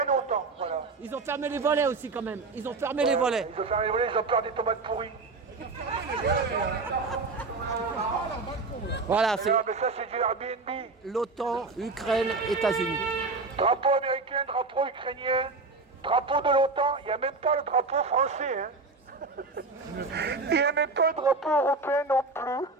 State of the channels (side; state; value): left; quieter; 3.8 dB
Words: autant. Voilà. Ils ont fermé les volets aussi quand même. Ils ont fermé les volets. Ils ont fermé les volets, ils ont peur des tomates pourries. Voilà, c'est Ah, mais ça, c'est du Airbnb. l'OTAN, Ukraine, États-Unis. Drapeau américain, drapeau ukrainien, drapeau de l'OTAN, il n'y a même pas le drapeau français. Hein. Il n'y a même pas le drapeau européen non plus.